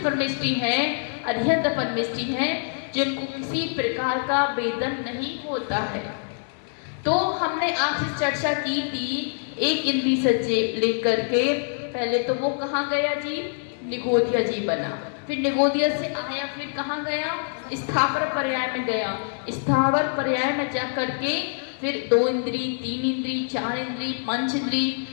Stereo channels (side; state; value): right; silent; digital silence